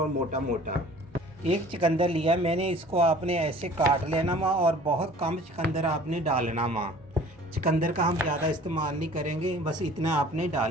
मोटा मोटा। एक चुकंदर लिया मैंने, इसको आपने ऐसे काट लेना माँ, और बहुत कम चुकंदर आपने डालना माँ। चुकंदर का हम ज़्यादा इस्तेमाल नहीं करेंगे, बस इतना आपने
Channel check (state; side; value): normal; both; correlation 0.48